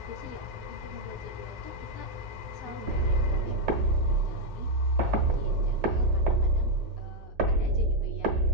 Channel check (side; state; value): both; normal; correlation 0.00